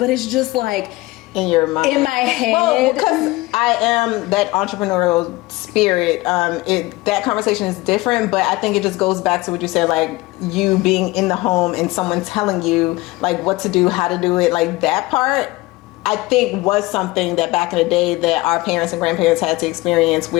it's just like, in your mind? In my head. Well, because I am that entrepreneurial spirit. That conversation is different, but I think it just goes back to what you said, like you being in the home and someone telling you like what to do, how to do it. Like that part, I think was something that back in the day that our parents and grandparents had to experience,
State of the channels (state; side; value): quieter; right; 20.7 dB